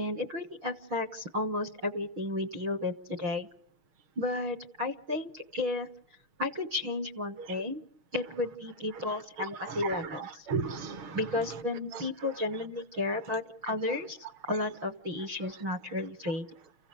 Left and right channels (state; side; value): late; left; 6.4 ms